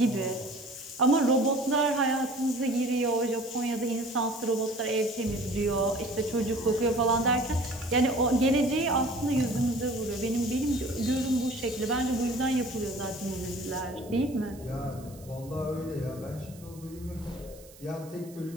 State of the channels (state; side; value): noise; right; hiss, 23 dB below the sound